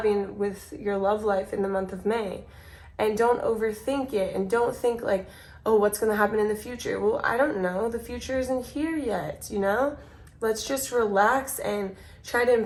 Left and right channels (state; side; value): identical; both; correlation 1.00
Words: with your love life in the month of May. And don't overthink it, and don't think like, oh, what's going to happen in the future? Well, I don't know. The future isn't here yet, you know? Let's just relax and try to